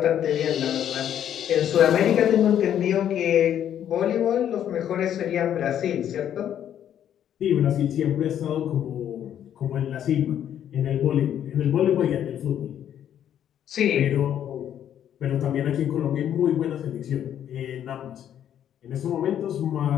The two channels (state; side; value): quieter; right; 10.1 dB